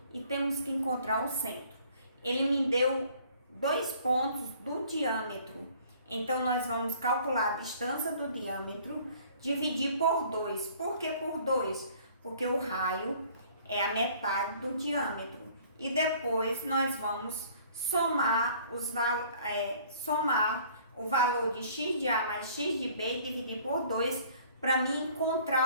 e temos que encontrar o centro. Ele me deu 2 pontos do diâmetro. Então, nós vamos calcular a distância do diâmetro, dividir por 2. Por que por 2? Porque o raio é a metade do diâmetro. E depois nós vamos somar o valor de x de A mais x de B e dividir por 2 para mim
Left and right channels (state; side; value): inverted; both; correlation -0.55